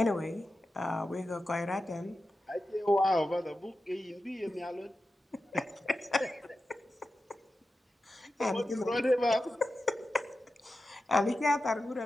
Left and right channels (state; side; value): normal; both; correlation 0.92